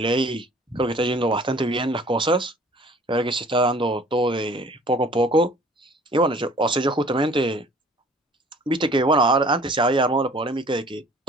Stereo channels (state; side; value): normal; both; correlation 0.51